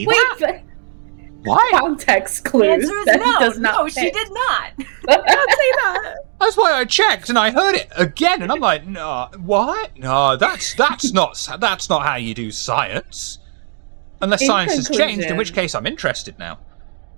that? But why? Context clues. The answer is that no. does not No, fit. she did not. Don't say that. That's why I checked and I heard it again, and I'm like, no, what? No, that's not how you do science. Unless science has changed, in which case I'm interested now.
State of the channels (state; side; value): silent; left; 55 dB below the other